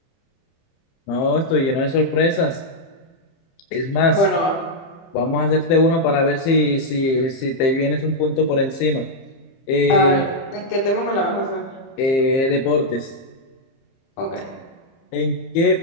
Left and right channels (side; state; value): right; late; 30 ms